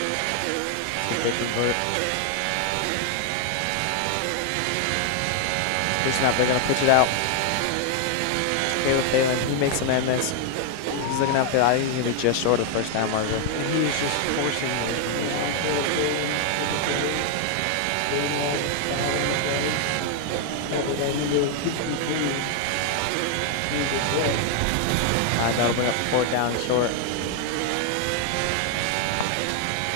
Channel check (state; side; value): different; both; correlation 0.00